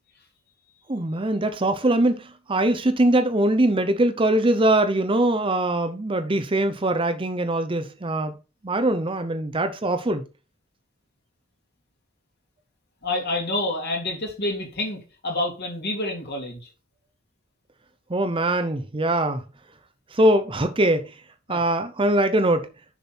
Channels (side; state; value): both; normal; correlation 0.51